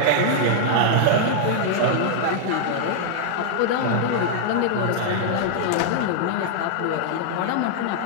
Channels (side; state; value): both; different; correlation -0.01